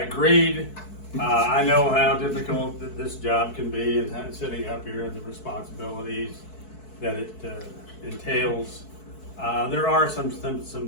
I know how difficult this job can be, and sitting up here and the responsibilities that it entails. There are some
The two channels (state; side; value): late; right; 4.6 ms